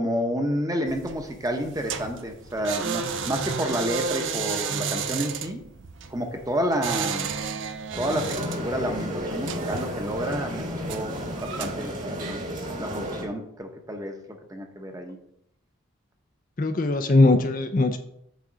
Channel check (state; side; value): normal; both; correlation 0.58